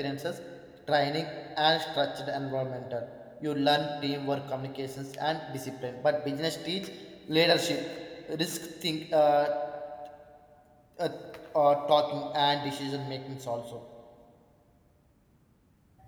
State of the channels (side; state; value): both; identical; correlation 1.00